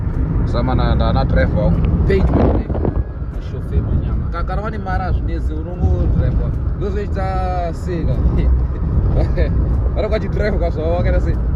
Samana na driver. Page my chauffeur manyama. Kakarwani mara zvineze unongo driver. Ndozoita sega. Varokati driver kaswa wakaita sei.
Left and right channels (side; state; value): both; identical; correlation 1.00